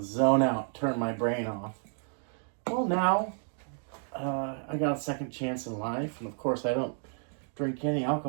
zone out, turn my brain off. Well, now I got a second chance in life, and of course I don't drink any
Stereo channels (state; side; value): silent; left; 57 dB below the other